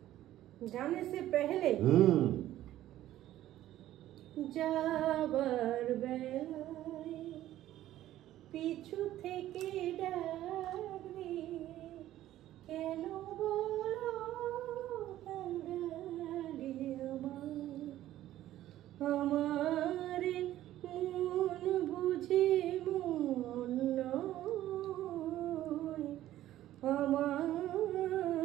জানে সে পহলে যাবার বেলায় পিছু থেকে ডাকবে, কেন বলো আমার মন বুঝে মন নয়,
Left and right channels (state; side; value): quieter; left; 13.7 dB